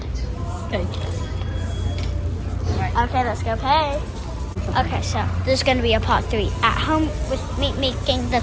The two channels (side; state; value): both; identical; correlation 1.00